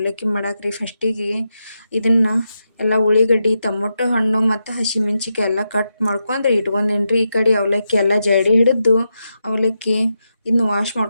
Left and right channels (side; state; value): both; inverted; correlation -0.86